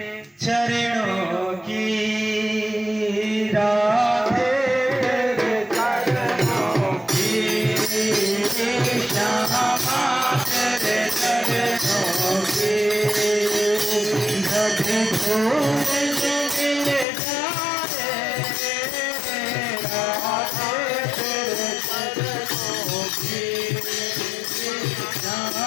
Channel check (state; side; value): drops out; right; at 17.1 s